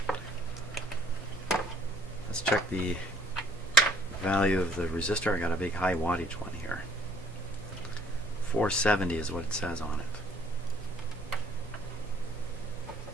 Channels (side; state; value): both; normal; correlation 0.59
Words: Let's check the value of the resistor. I got a big high wattage one here. 470 is what it says on it.